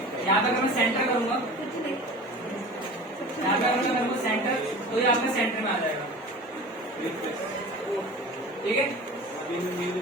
यहाँ पे अगर मैं सेंटर करूंगा यहाँ पे अगर मैं सेंटर, तो ये आपके सेंटर में आ जाएगा, ठीक है।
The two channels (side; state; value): both; normal; correlation 0.37